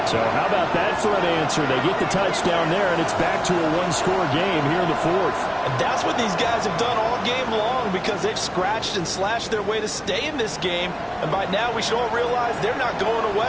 So how about that for an answer? They get the touchdown there, and it's back to a one-score game here in the 4th. And that's what these guys have done all game long because they've scratched and slashed their way to stay in this game. And by now, we should all realize they're not going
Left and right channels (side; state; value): both; identical; correlation 1.00